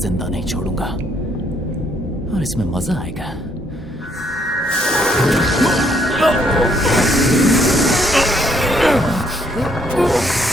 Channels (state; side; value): normal; both; correlation 0.69